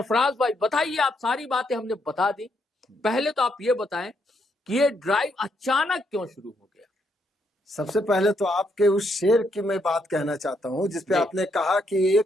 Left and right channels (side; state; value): both; normal; correlation 0.76